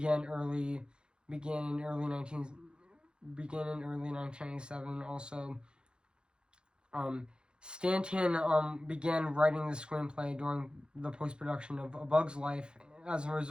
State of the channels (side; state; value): left; late; 0.050 ms